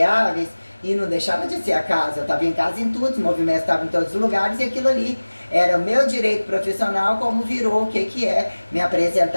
e não deixava de ser a casa, eu estava em casa em tudo, os movimentos estavam em todos os lugares, e aquilo ali era o meu direito profissional, como virou o que é me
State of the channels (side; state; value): both; inverted; correlation -1.00